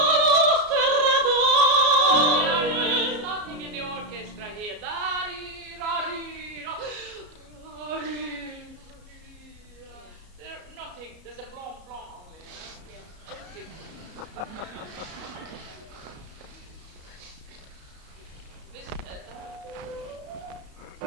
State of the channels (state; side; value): late; left; 33 ms